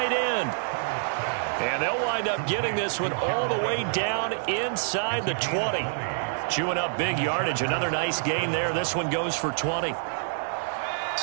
end. And they'll wind up getting this one all the way down inside the 20. Chewing up big yardage. Another nice gain there. This one goes for 20.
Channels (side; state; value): left; silent; digital silence